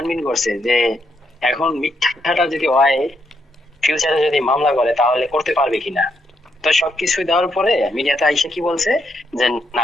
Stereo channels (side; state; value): both; normal; correlation 0.78